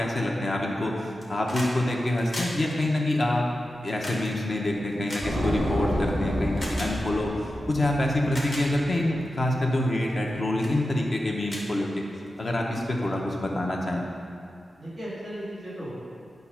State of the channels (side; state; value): both; normal; correlation 0.91